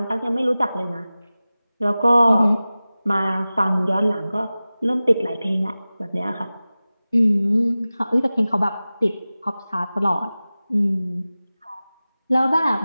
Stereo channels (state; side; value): inverted; both; correlation -0.97